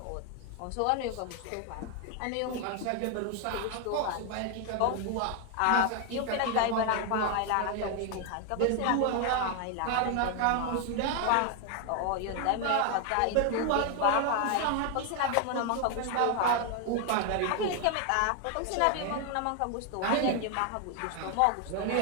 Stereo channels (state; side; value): different; both; correlation 0.00